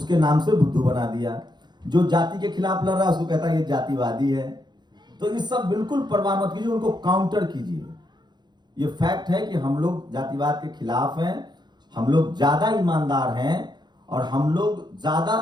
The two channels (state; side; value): late; left; 0.21 ms